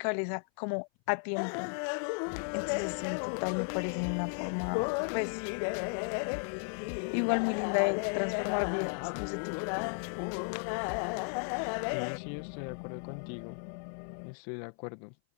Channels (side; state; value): right; silent; 55 dB below the other